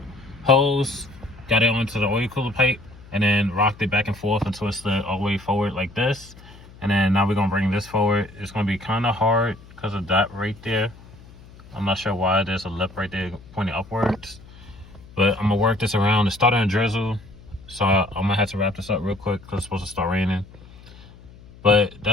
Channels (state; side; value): noise; left; hum, 21 dB below the sound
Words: hose, got it onto the oil cooler pipe, and then rocked it back and forth and twisted it all the way forward like this. And then now we're gonna bring this forward. It's gonna be kind of hard because of that right there. I'm not sure why there's a lip right there pointing upwards, but I'm gonna work this around. It's starting to drizzle, so I'm gonna have to wrap this up real quick because it's supposed to start raining. But